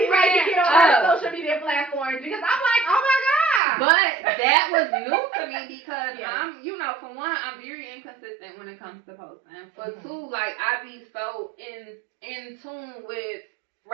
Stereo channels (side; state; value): left; drops out; at 3.6 s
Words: right to get on our social media platforms, because I'm like, oh my God. But that was new to me, because I'm, you know, for one, I'm very inconsistent when it comes to posting. For two, like, I be so in tune with